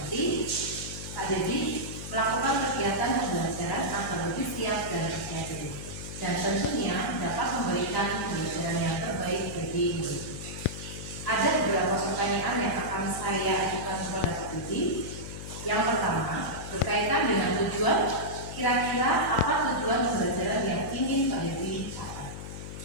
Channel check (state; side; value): noise; left; hum, 9 dB below the sound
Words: Pak Dedi melakukan kegiatan pembelajaran agar lebih siap dan bersiap dan tentunya dapat memberikan pembelajaran yang terbaik bagi murid. Ada beberapa pertanyaan yang akan saya ajukan kepada Pak Dedi. Yang pertama berkaitan dengan tujuan, kira-kira apa tujuan pembelajaran yang ingin Pak Dedi capai?